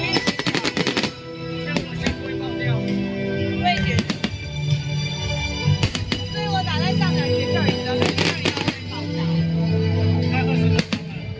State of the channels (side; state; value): both; identical; correlation 1.00